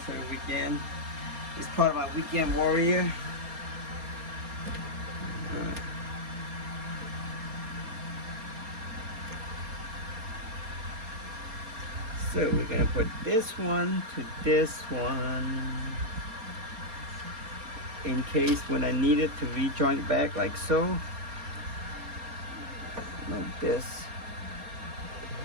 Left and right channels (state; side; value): late; left; 4.3 ms